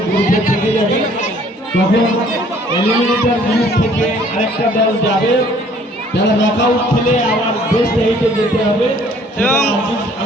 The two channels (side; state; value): both; normal; correlation 0.58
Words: গ্রুপে থেকে যাবে, তখন এলিমিনেটর গ্রুপ থেকে আরেকটা দল যাবে, যারা নকআউট খেলে আবার বেস্ট 8-এ যেতে হবে। এবং